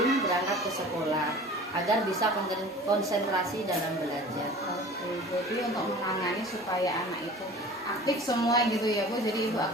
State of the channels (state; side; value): normal; both; correlation 0.42